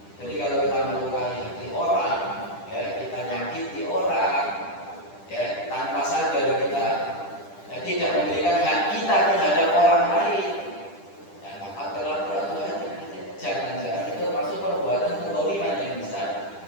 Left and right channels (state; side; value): late; right; 10 ms